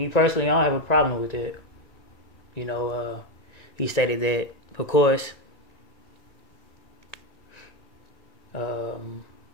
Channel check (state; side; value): late; right; 1.9 ms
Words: personally, I don't have a problem with it. You know, he stated that, of course,